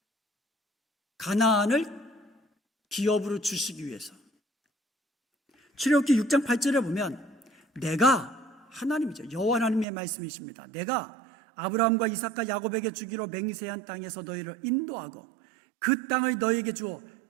가나안을 기업으로 주시기 위해서. 출애굽기 6장 8절에 보면 내가 하나님이죠. 여호와 하나님의 말씀이십니다. 내가 아브라함과 이삭과 야곱에게 주기로 맹세한 땅에서 너희를 인도하고 그 땅을 너희에게 주어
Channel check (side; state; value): left; drops out; at 9.9 s